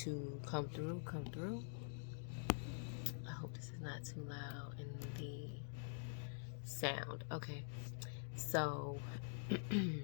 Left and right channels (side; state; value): right; silent; digital silence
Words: to come through, come through. I hope this is not too loud in the sound. Okay, so